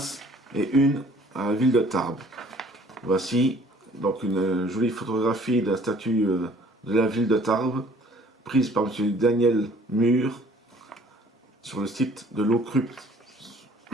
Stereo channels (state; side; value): normal; both; correlation 0.56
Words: et une à la ville de Tarbes. Voici donc une jolie photographie de la statue de la ville de Tarbes, prise par M. Daniel Mur sur le site de l'Ocrupt